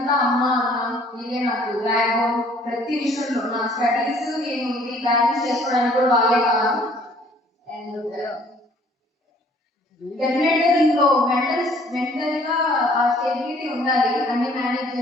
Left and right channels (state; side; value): normal; both; correlation 0.58